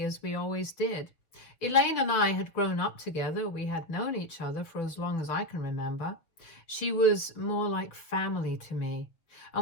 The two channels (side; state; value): right; late; 6.2 ms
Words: as we always did. Elaine and I had grown up together. We had known each other for as long as I can remember. She was more like family to me,